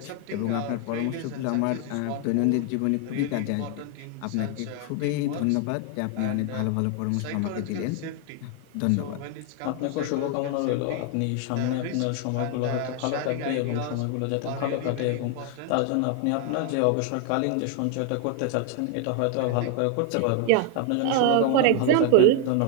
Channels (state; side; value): different; both; correlation 0.00